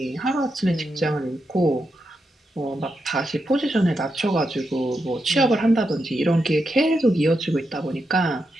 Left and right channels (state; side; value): normal; both; correlation 0.85